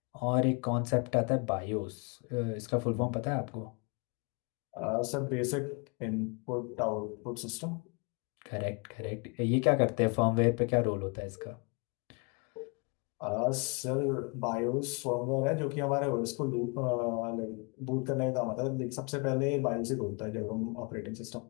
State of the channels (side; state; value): right; quieter; 33.1 dB